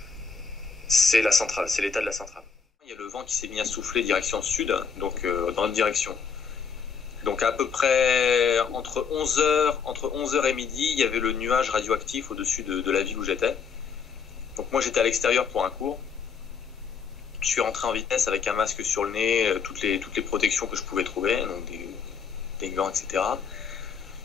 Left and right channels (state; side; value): quieter; right; 6.1 dB